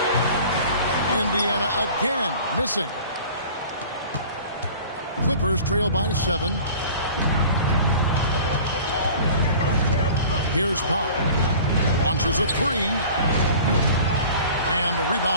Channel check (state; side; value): inverted; both; correlation -0.44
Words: Indiana again missing. Clippers trail by 7. Here's Powell. Launches a three. And the